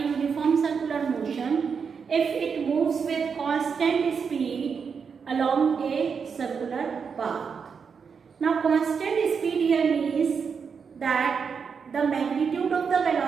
circular motion if it moves with constant speed along a circular path. Now constant speed here means that the magnitude of the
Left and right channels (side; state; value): left; quieter; 6.1 dB